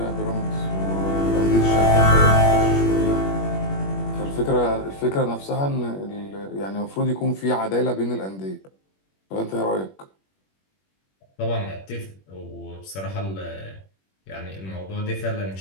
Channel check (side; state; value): right; late; 21 ms